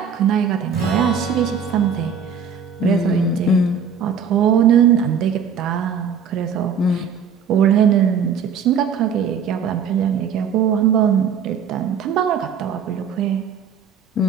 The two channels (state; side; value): quieter; left; 6.4 dB